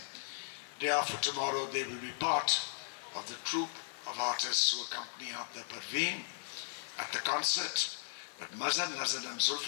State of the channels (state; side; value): silent; right; digital silence